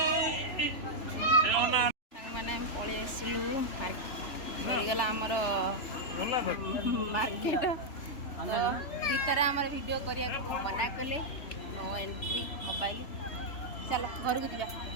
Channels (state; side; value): late; right; 3.3 ms